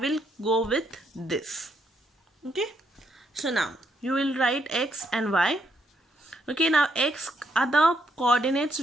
go with this. Okay, so now you will write x and y. Okay, now x are the coordinates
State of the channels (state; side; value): normal; both; correlation 0.76